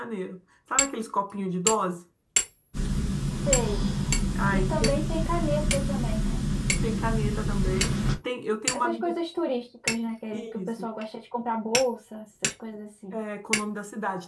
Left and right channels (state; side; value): identical; both; correlation 1.00